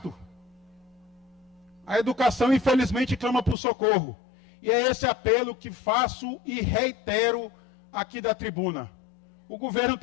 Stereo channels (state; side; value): drops out; right; at 3.6 s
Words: A educação, infelizmente, clama por socorro. E é esse apelo que faço e reitero aqui da tribuna. O governo